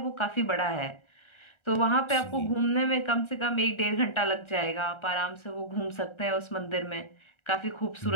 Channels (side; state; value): right; late; 1.3 ms